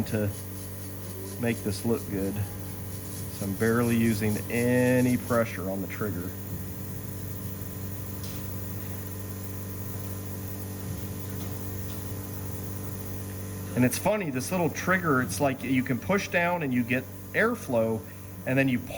to make this look good. So I'm barely using any pressure on the trigger. And it's funny, this little trigger, it's like you can push down and you get airflow, and then you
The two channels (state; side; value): identical; both; correlation 1.00